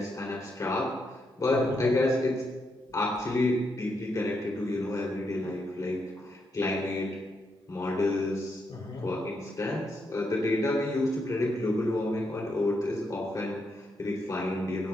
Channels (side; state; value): both; normal; correlation 0.80